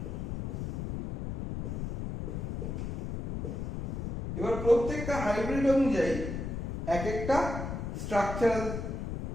এবার প্রত্যেকটা হাইব্রিড অনুযায়ী এক একটা স্ট্রাকচারাল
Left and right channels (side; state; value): left; noise; rumble, 5 dB below the sound